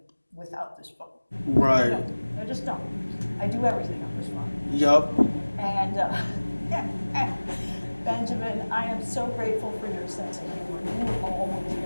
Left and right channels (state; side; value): inverted; both; correlation -1.00